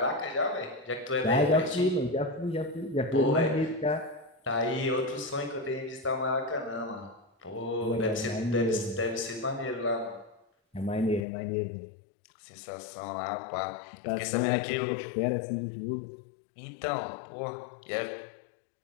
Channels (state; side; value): drops out; right; at 11.2 s